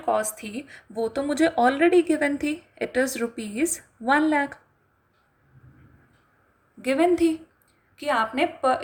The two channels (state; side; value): identical; both; correlation 1.00